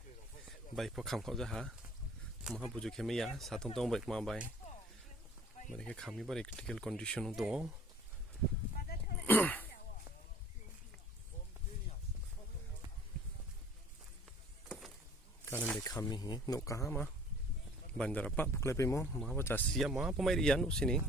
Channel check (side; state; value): both; normal; correlation 0.52